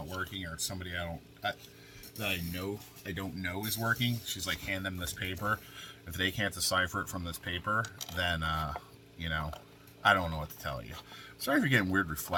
working, or it's somebody that I don't know is working, she's like, hand them this paper. If they can't decipher it from this paper, then I don't know what to tell you. Sorry if you're getting weird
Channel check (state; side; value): identical; both; correlation 1.00